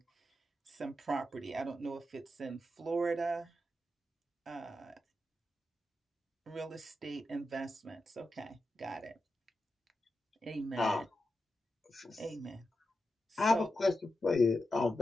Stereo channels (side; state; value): both; normal; correlation 0.89